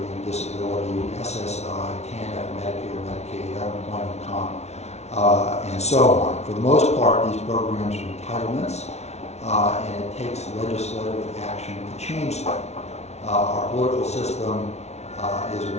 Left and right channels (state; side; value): late; right; 0.31 ms